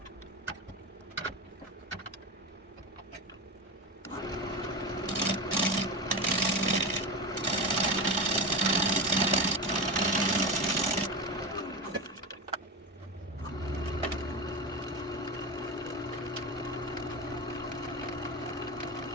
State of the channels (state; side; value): normal; both; correlation 0.21